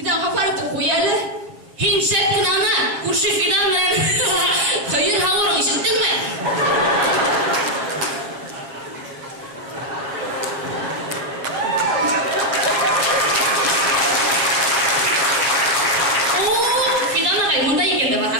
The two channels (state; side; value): late; left; 7.3 ms